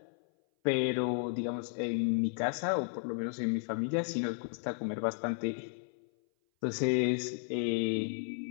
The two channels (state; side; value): silent; right; 55 dB below the other